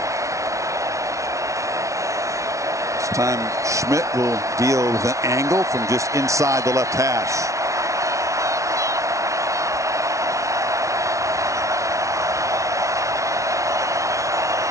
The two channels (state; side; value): late; left; 0.15 ms